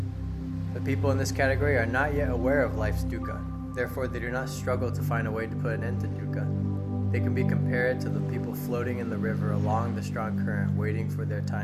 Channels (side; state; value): both; identical; correlation 1.00